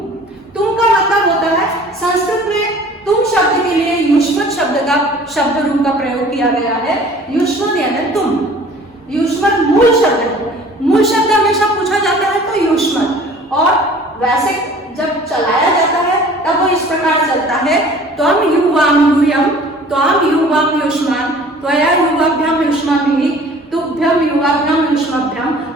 का मतलब होता है, संस्कृत में तुम शब्द के लिए युष्मत शब्द का शब्द रूप का प्रयोग किया गया है। युष्मत यानी तुम, युष्मत मूल शब्द है। मूल शब्द हमेशा पूछा जाता है तो युष्मत, और वैसे जब चलाया जाता है तब वो इस प्रकार चलता है, त्वम युवाम यूयम, त्वम युवाम युष्मान, त्वया युवाभ्याम युष्माभिः, तुभ्यम युवाभ्याम युष्माभ्याम,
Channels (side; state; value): both; normal; correlation 0.49